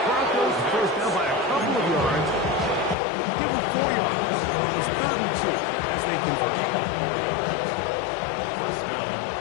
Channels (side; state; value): right; drops out; at 3.0 s